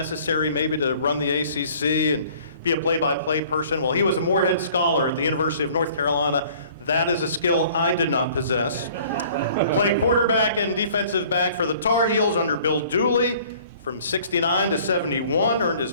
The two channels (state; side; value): inverted; both; correlation -0.53